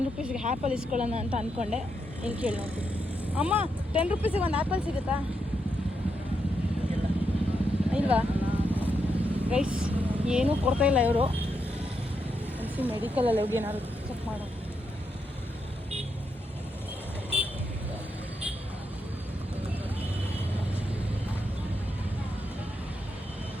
ರೂಪೀಸ್ಗೆ ಆ್ಯಪಲ್ ಇಸ್ಕೊಳ್ಳೋಣ ಅಂತ ಅಂದ್ಕೊಂಡೆ. ಇಲ್ಲಿ ಕೇಳಿ ನೋಡ್ತೀನಿ. ಅಮ್ಮ, 10 ರೂಪೀಸಿಗೆ ಒಂದು ಆ್ಯಪಲ್ ಸಿಗುತ್ತಾ? ಇಲ್ವಾ ಗೈಸ್? ಏನೂ ಕೊಡ್ತಾ ಇಲ್ಲ ಇವರು. ಅನಿಸಿ ಮೆಡಿಕಲಲ್ಲಿ ಹೋಗಿ ಏನಾದ್ರು ಚೆಕ್ ಮಾಡೋ.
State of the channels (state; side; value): normal; both; correlation 0.82